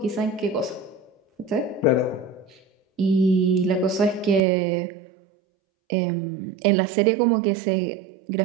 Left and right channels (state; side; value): drops out; left; at 4.4 s